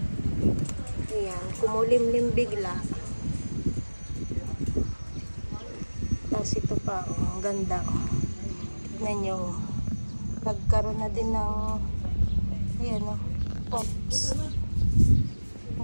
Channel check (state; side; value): inverted; both; correlation -1.00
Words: Ayan, kumulimlim bigla. Tapos ito pa, ang ganda. Tignan nyo. Nagkaroon na din ng ayan pops.